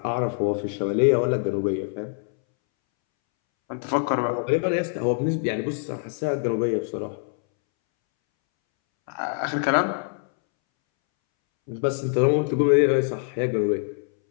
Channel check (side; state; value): right; silent; 62 dB below the other